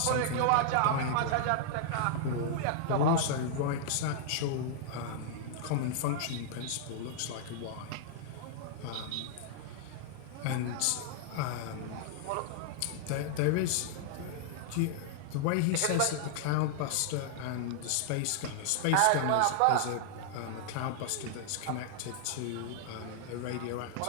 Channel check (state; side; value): different; both; correlation -0.01